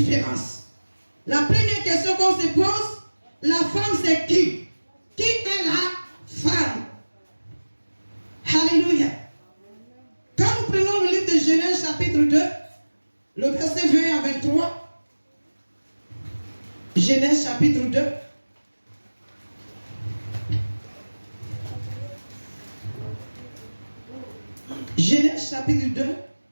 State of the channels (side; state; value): both; inverted; correlation -1.00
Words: La première question qu'on se pose, la femme c'est qui? Qui est la femme? Alléluia. Quand nous prenons le livre de Genèse chapitre 2, le verset 20 à 23, Genèse chapitre 2, Genèse chapitre 2,